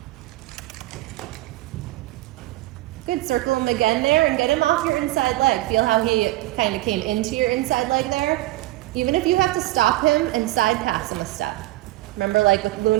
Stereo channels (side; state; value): left; quieter; 17.9 dB